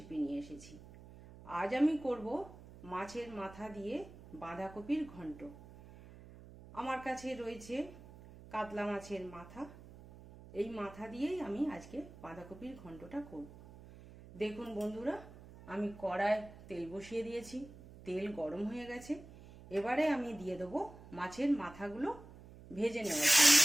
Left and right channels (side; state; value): right; noise; hum, 18 dB below the sound